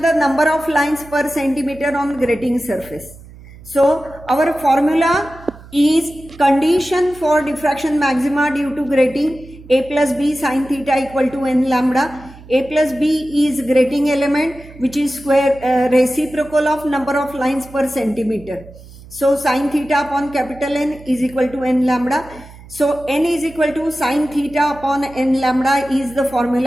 number of lines per centimeter on grating surface. So our formula is condition for diffraction maxima due to grating: a plus b sin theta equal to n lambda. A plus b is grating element, which is square reciprocal of number of lines per centimeter. So sin theta upon capital N is equal to n lambda. So n is equal to sin theta upon n lambda is the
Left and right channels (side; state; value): right; noise; hum, 20 dB below the sound